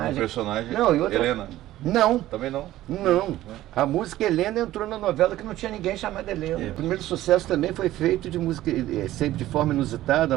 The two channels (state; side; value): quieter; left; 14.8 dB